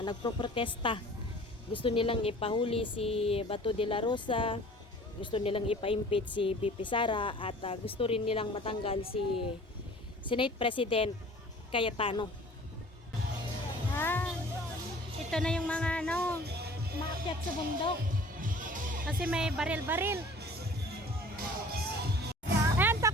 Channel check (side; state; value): both; normal; correlation 0.47